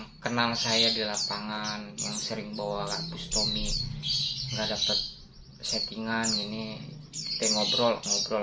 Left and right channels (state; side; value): identical; both; correlation 1.00